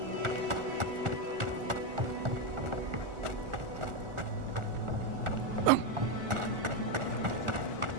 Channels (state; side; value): late; left; 1.4 ms